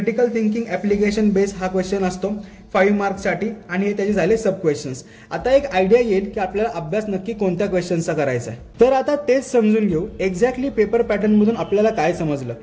thinking application base हा क्वेश्चन असतो 5 मार्क्ससाठी आणि हे त्याचे झाले सब क्वेश्चन्स. आता एक आयडिया येईल की आपल्याला अभ्यास नक्की कोणत्या क्वेश्चनचा करायचा आहे. तर आता तेच समजून घेऊ एक्झॅक्टली पेपर पॅटर्न मधून आपल्याला काय समजलं.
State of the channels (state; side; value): identical; both; correlation 1.00